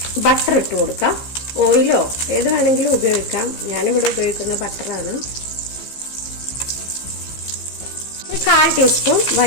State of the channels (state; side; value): late; right; 15 ms